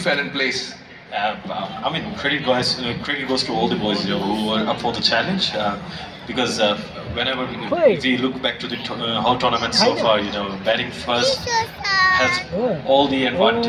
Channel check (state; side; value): identical; both; correlation 1.00